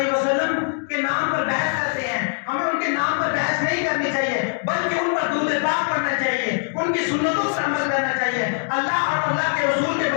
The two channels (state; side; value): silent; right; digital silence